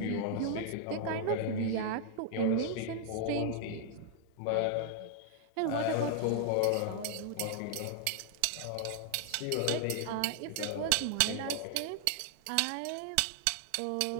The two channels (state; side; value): different; both; correlation 0.00